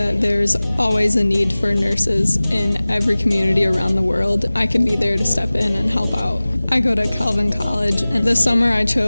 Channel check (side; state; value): both; inverted; correlation -0.99